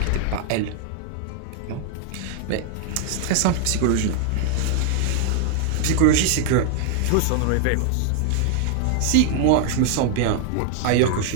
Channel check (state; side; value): different; both; correlation 0.00